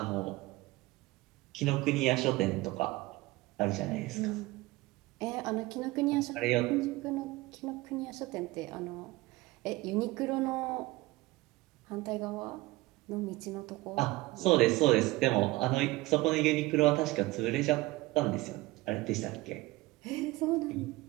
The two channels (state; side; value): quieter; left; 20.3 dB